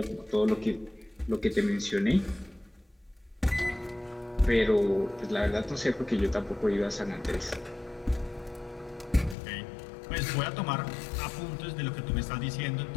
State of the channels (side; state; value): right; drops out; at 9.3 s